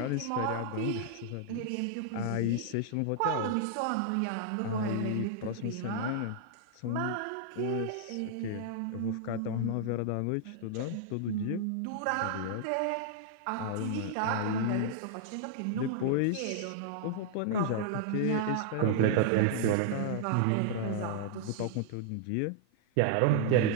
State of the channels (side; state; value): both; different; correlation -0.01